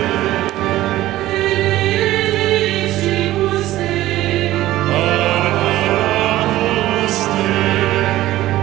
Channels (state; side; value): quieter; left; 15.5 dB